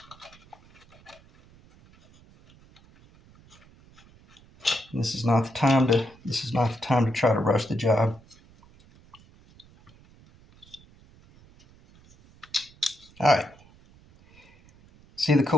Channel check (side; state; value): right; noise; rumble, 27 dB below the sound